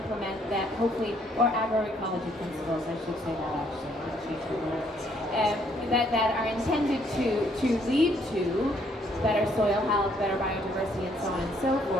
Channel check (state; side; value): normal; both; correlation 0.67